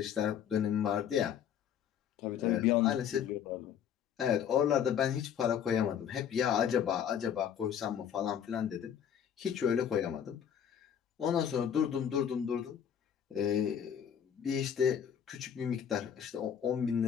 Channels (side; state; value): right; quieter; 8.7 dB